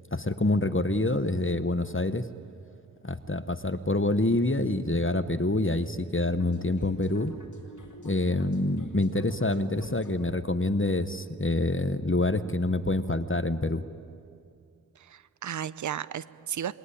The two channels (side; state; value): both; normal; correlation 0.54